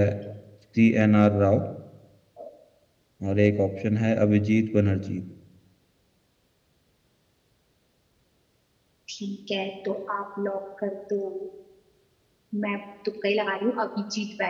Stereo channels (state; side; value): identical; both; correlation 1.00